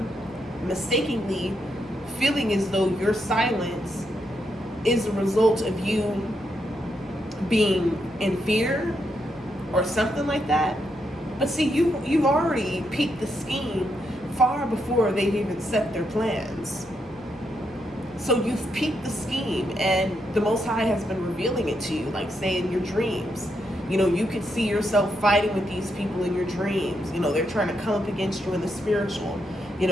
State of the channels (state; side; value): noise; left; hum, 27 dB below the sound